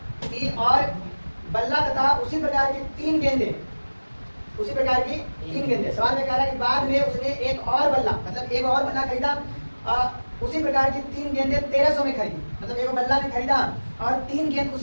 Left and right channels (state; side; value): inverted; both; correlation -1.00